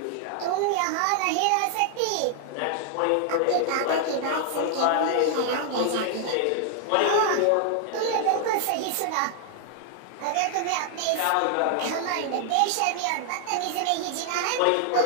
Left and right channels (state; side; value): different; both; correlation 0.00